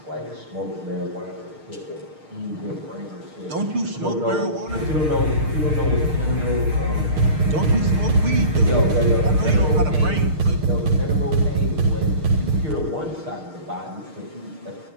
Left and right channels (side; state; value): left; late; 6.5 ms